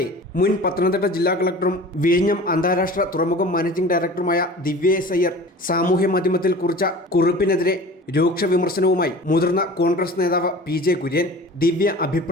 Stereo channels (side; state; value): both; normal; correlation 0.40